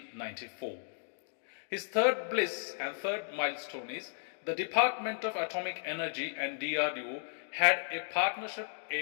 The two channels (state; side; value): silent; right; digital silence